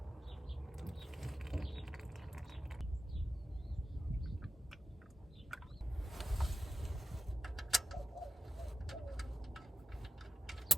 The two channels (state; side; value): normal; both; correlation 0.92